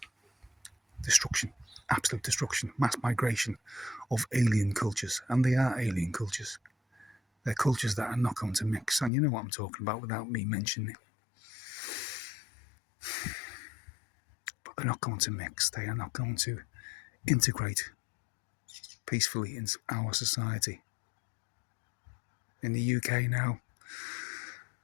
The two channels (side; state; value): right; drops out; at 9.1 s